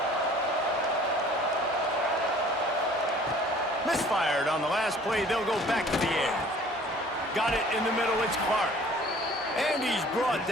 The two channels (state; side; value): normal; both; correlation 0.51